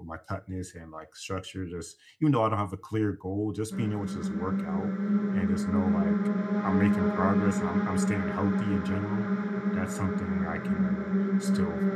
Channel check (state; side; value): identical; both; correlation 1.00